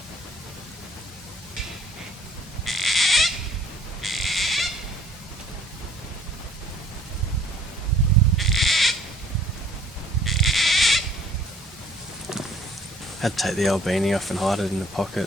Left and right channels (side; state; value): both; normal; correlation 0.56